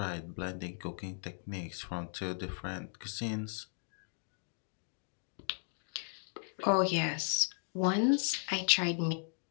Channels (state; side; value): silent; right; digital silence